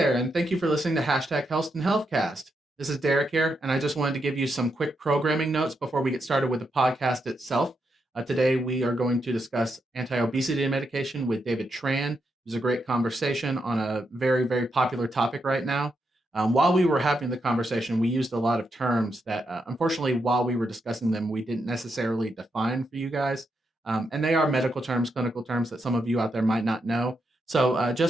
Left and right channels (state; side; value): normal; both; correlation 0.82